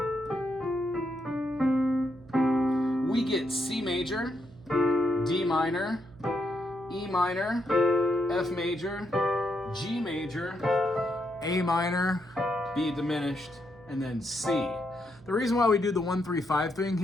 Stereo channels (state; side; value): noise; right; hum, 24 dB below the sound